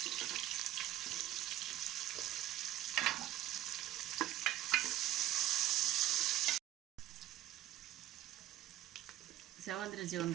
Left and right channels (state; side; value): quieter; left; 13.7 dB